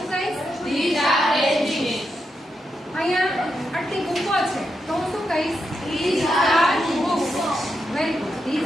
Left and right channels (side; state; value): both; normal; correlation 0.85